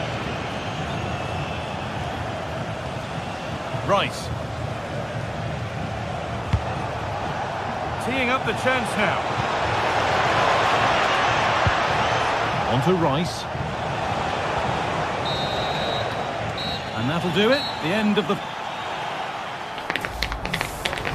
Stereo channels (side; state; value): both; identical; correlation 1.00